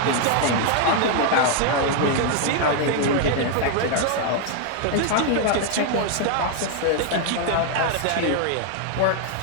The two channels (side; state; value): both; different; correlation 0.00